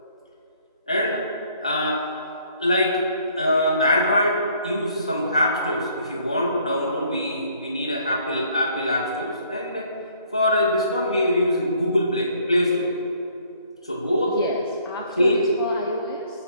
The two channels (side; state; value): both; inverted; correlation -0.62